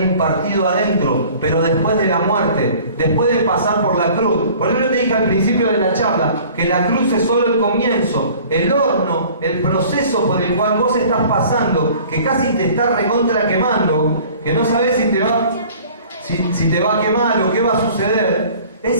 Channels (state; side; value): inverted; both; correlation -0.48